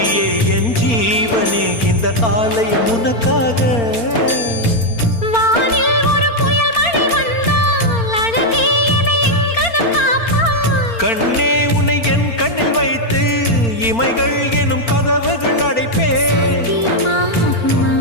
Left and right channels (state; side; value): late; right; 4.4 ms